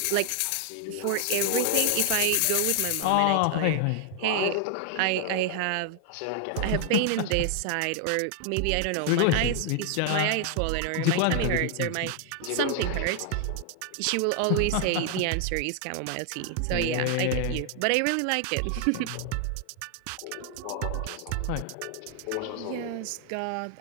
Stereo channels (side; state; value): both; different; correlation 0.00